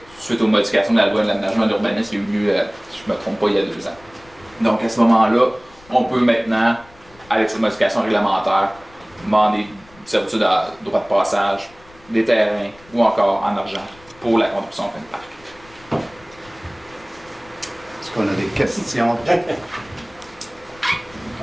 suite aux modifications de la loi de l'aménagement de l'urbanisme qui a eu lieu, si je ne me trompe pas, il y a 2 ans. Donc à ce moment-là, on peut maintenant, avec cette modification réglementaire, demander des servitudes à droit de passage, des terrains ou encore en argent pour la contribution en fin de parc. Est-ce qu'on a des questions?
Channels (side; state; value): left; noise; rumble, 26 dB below the sound